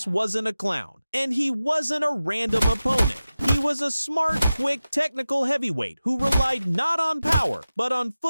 wasn't a clown, and he wasn't a random opponent. He was a smart, quick, technical heavyweight who relied not on power, but on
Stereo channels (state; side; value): inverted; both; correlation -0.94